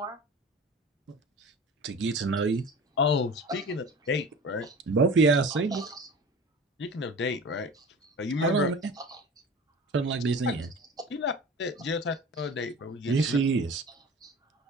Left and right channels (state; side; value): normal; both; correlation 0.38